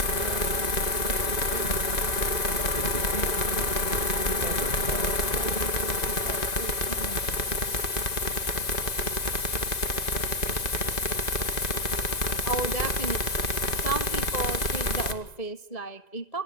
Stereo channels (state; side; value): late; right; 1.9 ms